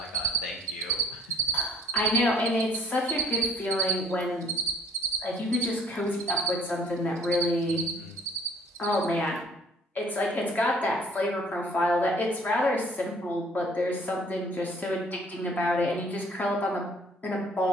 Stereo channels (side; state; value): both; normal; correlation 0.57